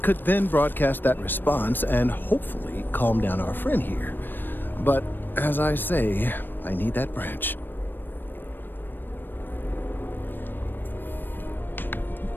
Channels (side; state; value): right; late; 0.094 ms